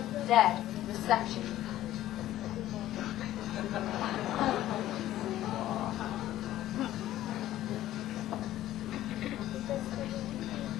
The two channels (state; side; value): quieter; right; 13.9 dB